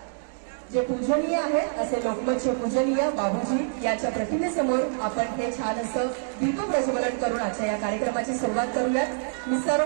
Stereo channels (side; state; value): left; silent; digital silence